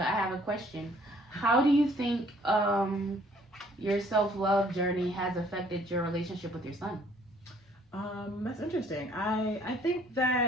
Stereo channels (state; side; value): normal; both; correlation 0.60